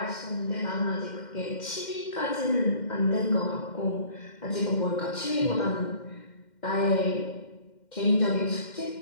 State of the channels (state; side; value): late; right; 2.1 ms